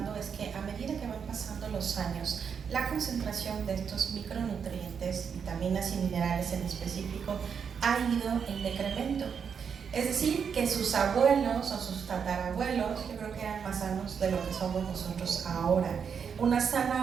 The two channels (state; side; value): quieter; left; 6.8 dB